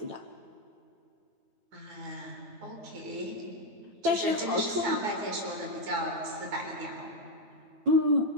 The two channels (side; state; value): left; late; 9.1 ms